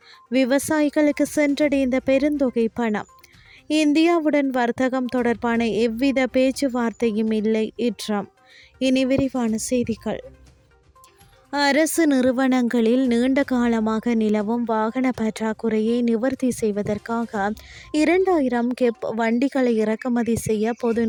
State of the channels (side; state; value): both; identical; correlation 1.00